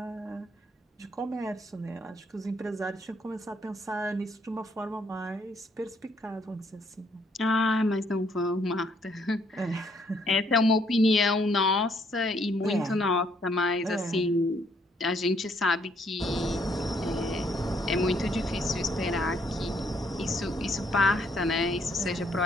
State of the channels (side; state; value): both; normal; correlation 0.69